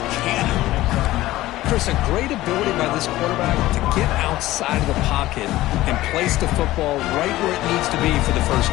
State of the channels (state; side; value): quieter; right; 16.5 dB